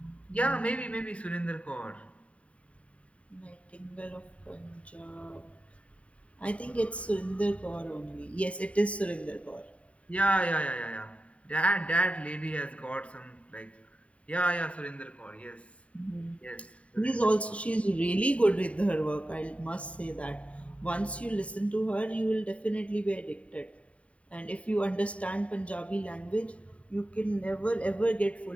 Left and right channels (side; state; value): right; late; 0.065 ms